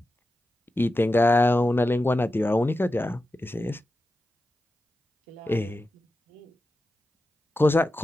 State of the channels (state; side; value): normal; both; correlation 0.91